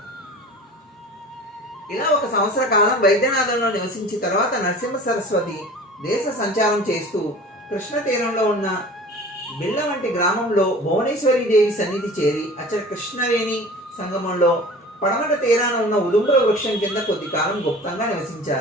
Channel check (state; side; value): normal; both; correlation 0.41